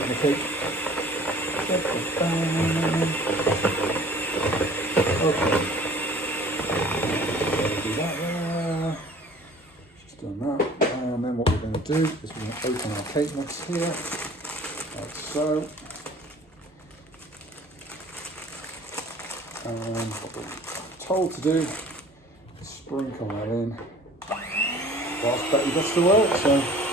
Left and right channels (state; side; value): normal; both; correlation 0.49